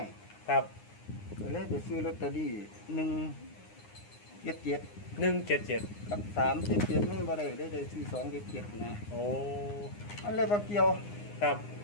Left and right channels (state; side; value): late; right; 9.7 ms